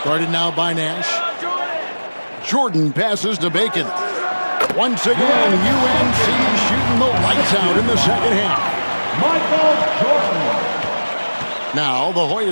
guarded now by Nash. Jordan passes to Bacon. Once again, UNC shooting the lights out in the second half. Michael Jordan. Now the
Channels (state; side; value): inverted; both; correlation -1.00